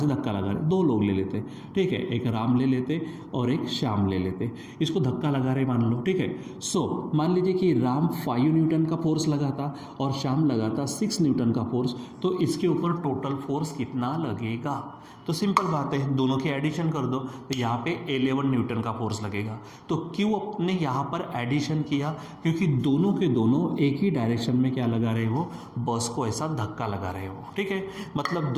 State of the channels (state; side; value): identical; both; correlation 1.00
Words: धक्का लगा रहे, 2 लोग ले लेते, ठीक है, एक राम ले लेते और एक श्याम ले लेते, इसको धक्का लगा रहे मान लो, ठीक है। सो मान लीजिए कि राम 5 न्यूटन का फोर्स लगाता और श्याम लगाता 6 न्यूटन का फोर्स, तो इसके ऊपर टोटल फोर्स कितना लगेगा। तो सिंपल बात है, दोनों की एडिशन कर दो तो यहाँ पे 11 न्यूटन का फोर्स लगेगा। तो क्यों अपने यहाँ पर एडिशन किया, क्योंकि दोनों के दोनों एक ही डायरेक्शन में क्या लगा रहे हो, बस को ऐसा धक्का लगा रहे हो, ठीक है। मतलब